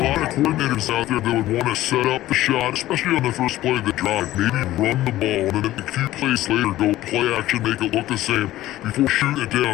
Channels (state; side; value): quieter; right; 15.2 dB